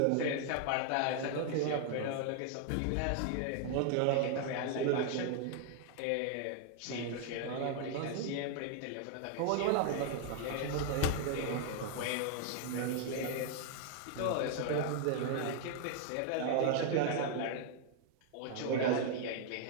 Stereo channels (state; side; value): different; both; correlation 0.00